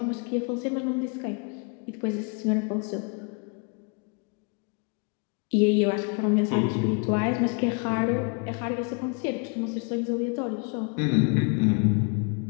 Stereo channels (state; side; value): quieter; right; 36.1 dB